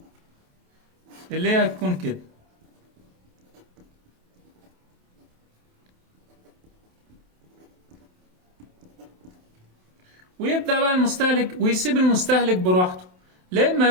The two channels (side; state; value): left; late; 27 ms